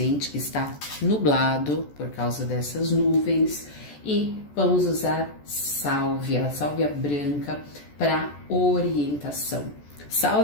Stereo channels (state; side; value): late; right; 14 ms